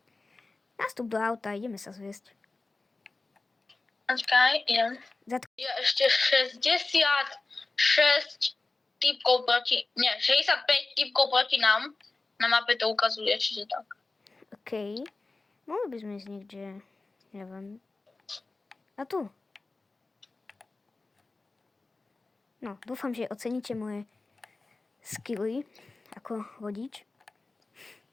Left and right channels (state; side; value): quieter; right; 3.5 dB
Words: Nastup do auta, ideme sa zviesť. Počkaj, idem. Je ešte 66 typkov proti... Nie, 65 typkov proti nám. Na mape to ukazuje, čiže tak. OK. Mohli by sme ísť niekde, neviem. A tu. No, dúfam, že oceníte moje skilly ako vodič.